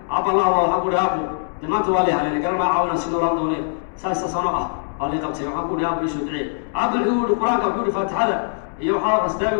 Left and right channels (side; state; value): right; silent; 65 dB below the other